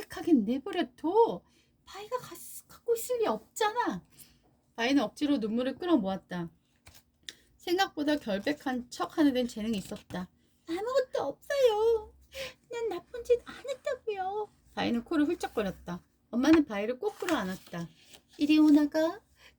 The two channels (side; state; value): both; identical; correlation 1.00